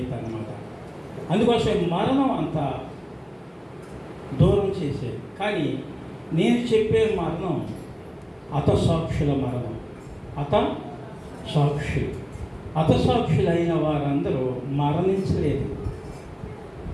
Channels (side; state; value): both; identical; correlation 1.00